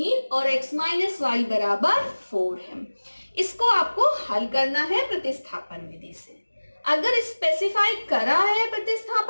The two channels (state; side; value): inverted; both; correlation -1.00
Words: और x माइनस वाई बराबर 4 है। इसको आपको हल करना है प्रतिस्थापन विधि से। अगर स्पेसिफाई करा है